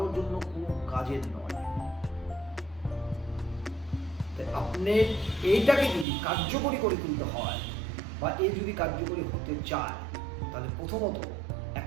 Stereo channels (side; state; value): left; drops out; at 6.1 s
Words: জন্য কোনো কাজের নয়। আপনি এইটাকে যদি কার্যকরী করে তুলতে হয় বা এই যদি কার্যকরী হতে চায় তাহলে প্রথমত